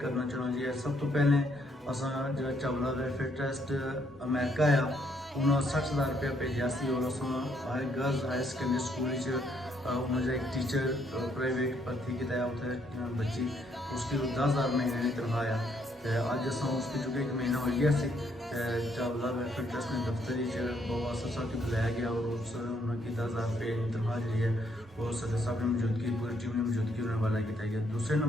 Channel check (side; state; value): both; normal; correlation 0.71